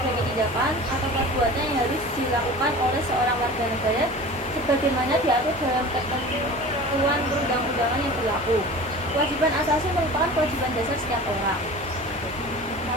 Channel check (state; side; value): normal; both; correlation 0.38